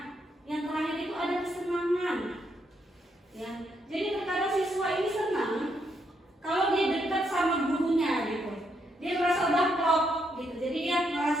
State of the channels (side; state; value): both; normal; correlation 0.77